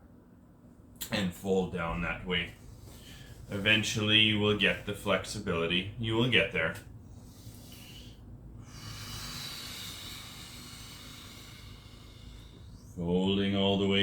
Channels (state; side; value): identical; both; correlation 1.00